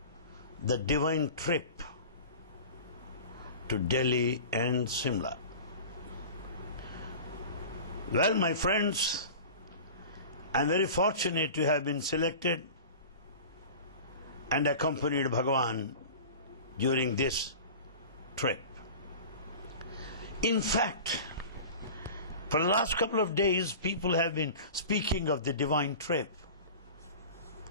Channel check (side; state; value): both; inverted; correlation -0.37